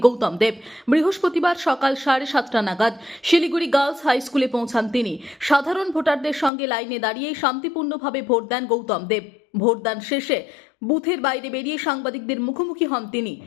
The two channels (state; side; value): drops out; right; at 6.5 s